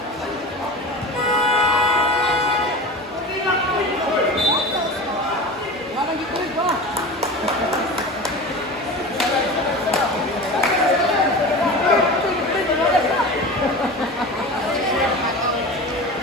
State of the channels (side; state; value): both; normal; correlation 0.31